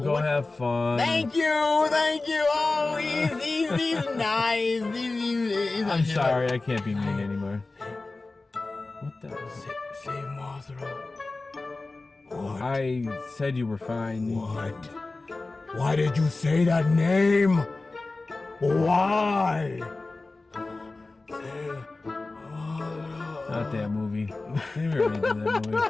have fun. Thank you. Oh, he's nice. I'm sorry. I can't be mean anymore. What the? Save Mothra. What? I said you were fine. What? Why did you say that name? Why? Not that movie. They already did that movie.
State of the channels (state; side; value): quieter; right; 3.4 dB